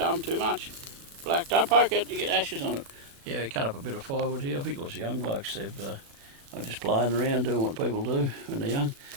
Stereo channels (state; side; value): late; left; 36 ms